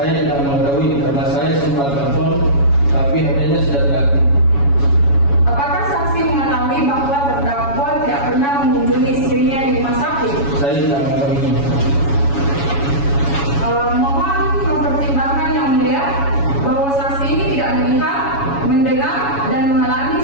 tidak mengetahui karena saya sempat telepon, tapi HP-nya sudah tidak aktif. Apakah saksi mengetahui bahwa terdakwa tidak pernah mengunjungi istrinya di rumah sakit? Saya tidak mengetahui. Mohon mempertimbangkan yang mulia bahwa saksi ini tidak melihat, mendengar, dan mengalami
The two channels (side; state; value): right; late; 7.1 ms